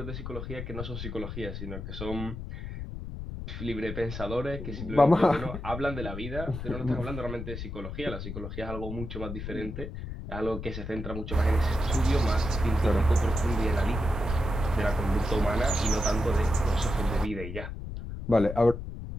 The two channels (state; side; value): noise; left; rumble, 7 dB below the sound